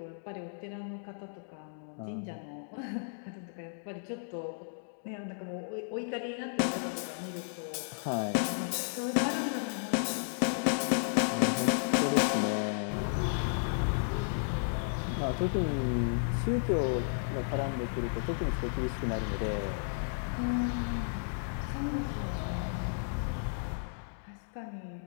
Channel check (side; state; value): right; silent; digital silence